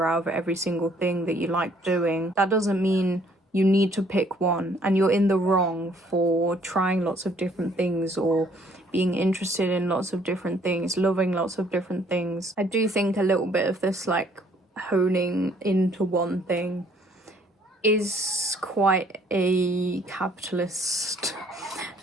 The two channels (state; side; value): normal; both; correlation 0.62